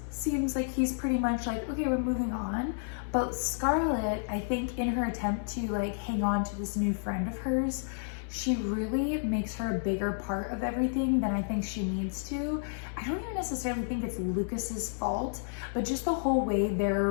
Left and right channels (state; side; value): silent; right; digital silence